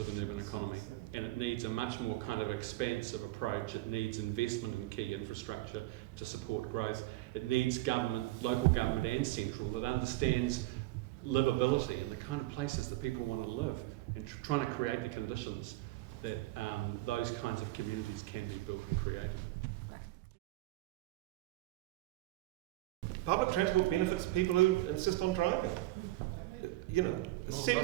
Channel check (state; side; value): quieter; left; 17.9 dB